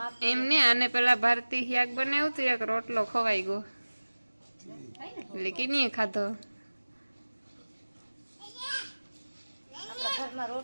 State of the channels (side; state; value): both; inverted; correlation -1.00